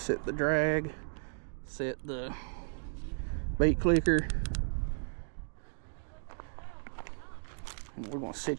the drag. Set the bait clicker. And we're gonna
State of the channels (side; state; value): left; silent; digital silence